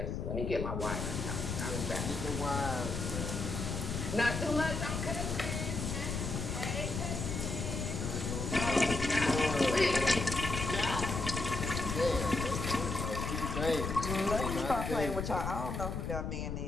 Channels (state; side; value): noise; left; rumble, 3 dB below the sound